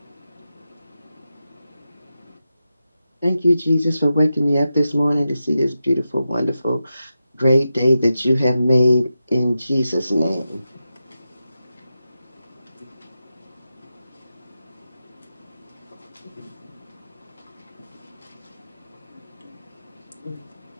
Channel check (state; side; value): inverted; both; correlation -0.90